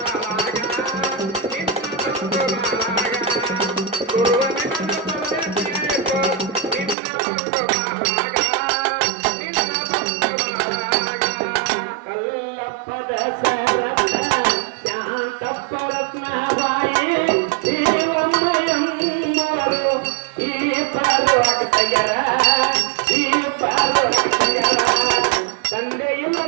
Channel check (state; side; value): drops out; left; at 7.0 s